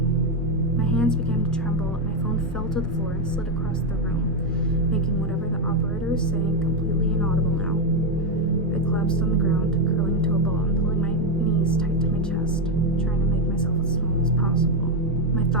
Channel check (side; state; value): both; normal; correlation 0.05